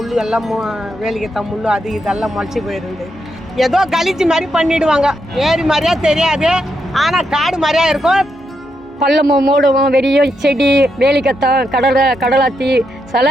எல்லாம் வேலிக்கத்தான் முள்ளு அது இதெல்லாம் முளைச்சி போயிருந்து. ஏதோ கழிச்சு மாதிரி பண்ணிடுவாங்க. ஏரி மாதிரியா தெரியாது, ஆனால் காடு மாதிரியா இருக்கும். பள்ளமும் மூடவும் வெறிய செடி வேலிக்கத்தான் கடலாத்தி சில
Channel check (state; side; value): normal; both; correlation 0.82